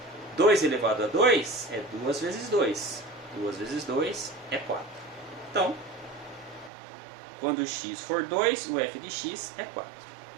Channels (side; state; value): left; drops out; at 6.7 s